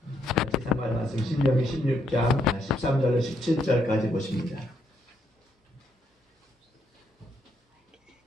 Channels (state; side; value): normal; both; correlation 0.75